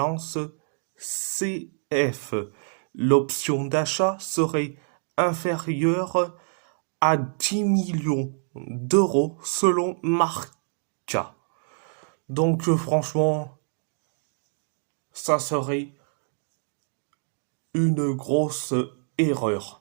CF. L'option d'achat serait inférieure à 10 millions d'euros selon Marca. Donc franchement, ça serait une grosse erreur.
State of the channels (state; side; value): silent; left; 61 dB below the other